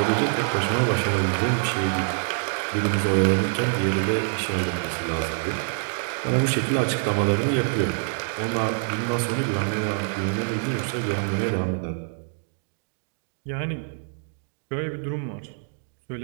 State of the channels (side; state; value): left; silent; 61 dB below the other